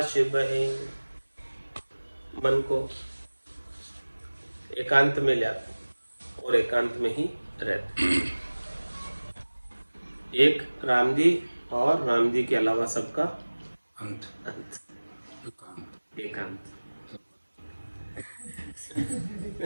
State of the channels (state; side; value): inverted; both; correlation -1.00